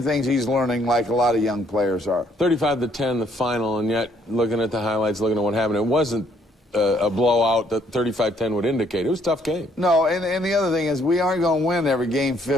things he's learning like a lot of young players are. 35-10, the final, and yet looking at the highlights, looking at what happened, it wasn't a blowout that 35-10 would indicate. It was a tough game. No, and the other thing is we aren't going to win every game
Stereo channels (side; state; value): both; normal; correlation 0.67